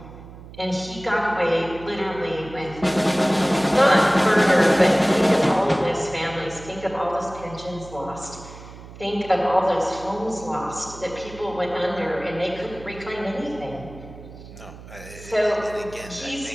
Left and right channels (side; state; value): right; noise; hum, 16 dB below the sound